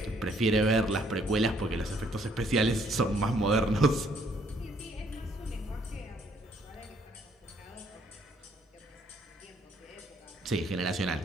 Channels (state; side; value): normal; both; correlation 0.66